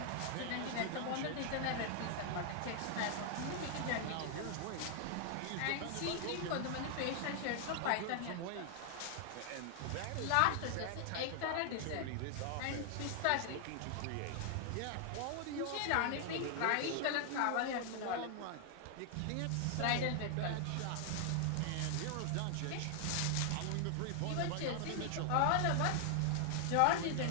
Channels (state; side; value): different; both; correlation 0.00